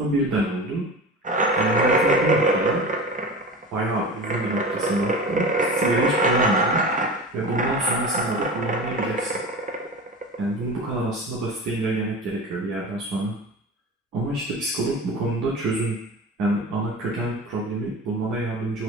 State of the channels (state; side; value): normal; both; correlation 0.31